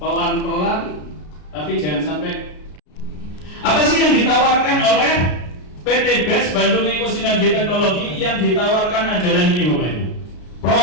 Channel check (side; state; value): right; late; 33 ms